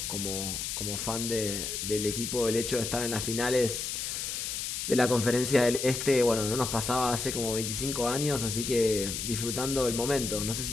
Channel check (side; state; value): left; noise; hiss, 3 dB below the sound